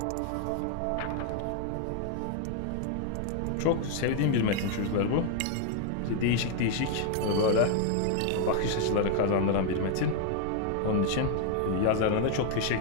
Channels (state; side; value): different; both; correlation 0.00